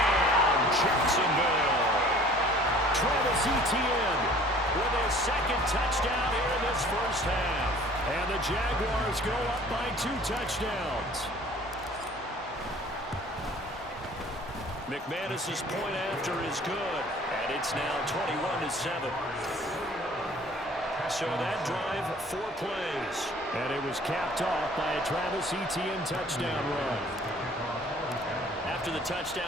Jacksonville. Travis Etienne With his second touchdown here in this first half. And the Jaguars go up by 2 touchdowns. McManus's point after is good, and it's now 21-7. So that drive, 4 plays. And it was capped off by a Travis Etienne touchdown run. After the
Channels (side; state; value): both; normal; correlation 0.51